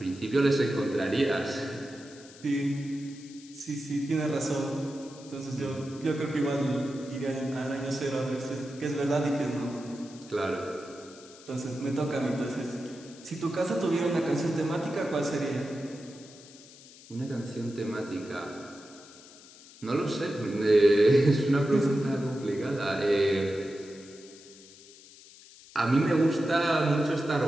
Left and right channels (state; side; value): noise; left; hiss, 21 dB below the sound